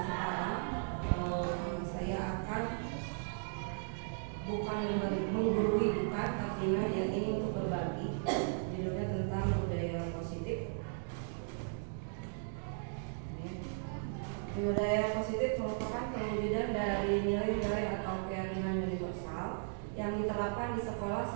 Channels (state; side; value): silent; left; digital silence